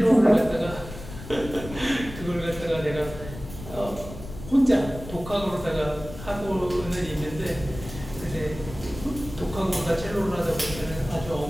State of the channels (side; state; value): left; noise; rumble, 12 dB below the sound